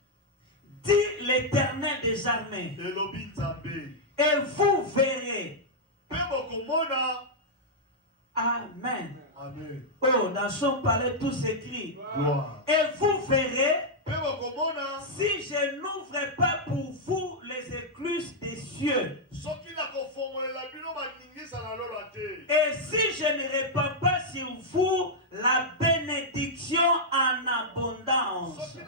dit l'Éternel des armées, elobi Nzambe. et vous verrez. Pe bokomona. Amen. Amen. Oh, dans son palais tout s'écrit. Gloire. Et vous verrez, Pe bokomona. si je n'ouvre pas pour vous les écluses des cieux, Soki na kofongolela bino baningisa na lola te. et si je ne répands pas sur vous la bénédiction en abondance, Soki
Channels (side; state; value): both; normal; correlation -0.06